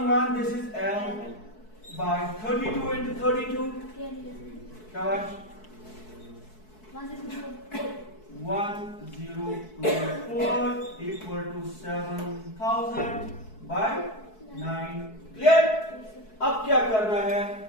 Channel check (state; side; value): late; right; 4.6 ms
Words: this is L by 32 into 32 क्या बात? 1024 equal to 7000 by 9। क्लियर? अब क्या करना है?